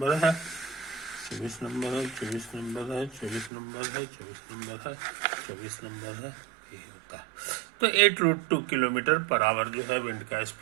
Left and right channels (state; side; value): drops out; left; at 3.5 s